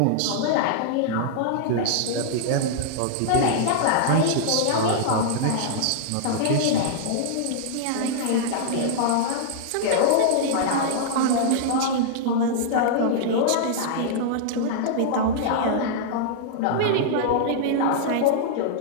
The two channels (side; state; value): both; different; correlation -0.02